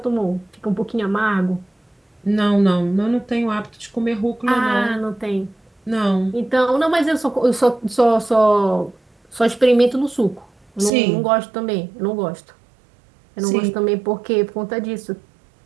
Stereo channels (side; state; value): left; drops out; at 10.9 s